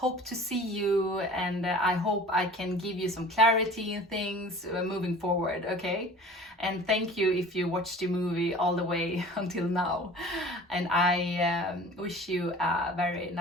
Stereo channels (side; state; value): both; normal; correlation 0.43